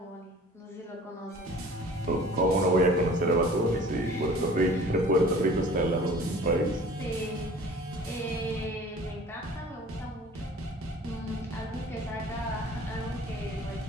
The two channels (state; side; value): normal; both; correlation 0.47